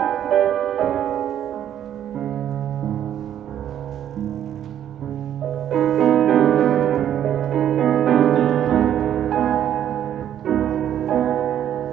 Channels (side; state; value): left; quieter; 10.5 dB